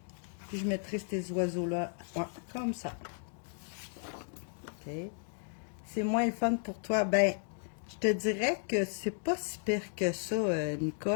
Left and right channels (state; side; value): silent; right; 55 dB below the other